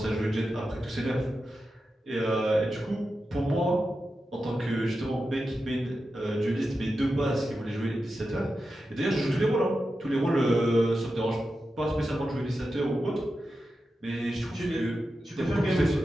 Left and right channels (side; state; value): both; normal; correlation 0.91